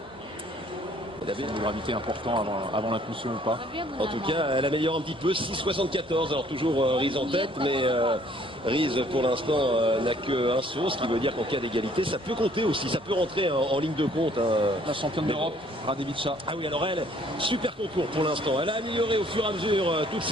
Elle avait une gravité importante avant l'impulsion ou pas. En tout cas, elle améliore un petit peu, 6,74. Alors toujours Reese en tête, mais Reese pour l'instant n'a qu'un saut, ce qui veut dire qu'en cas d'égalité, ça peut compter aussi, ça peut rentrer en ligne de compte. La championne d'Europe, Radevica. Ah oui, alors elle, super concours pour l'instant. Elle a amélioré au fur et à mesure toutes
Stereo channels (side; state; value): both; normal; correlation 0.60